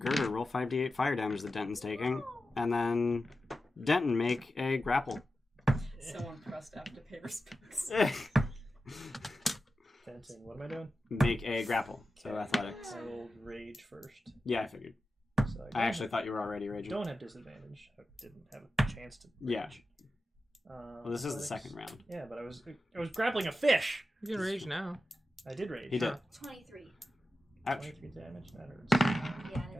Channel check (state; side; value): normal; both; correlation 0.92